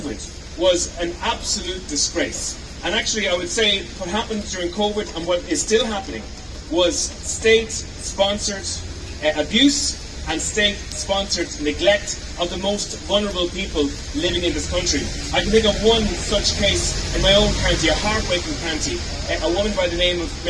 was an absolute disgrace. And actually, I would say what happened during COVID and what is still happening was state-sponsored abuse and state-sponsored neglect of the most vulnerable people living in this country. I can think of one such case in my own county, a heartbreaking county. A woman by the name of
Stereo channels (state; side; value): identical; both; correlation 1.00